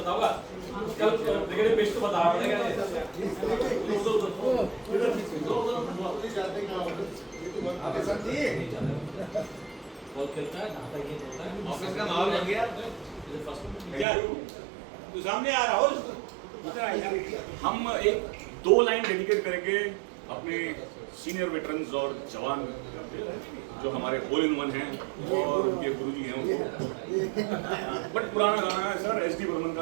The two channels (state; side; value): drops out; left; at 14.1 s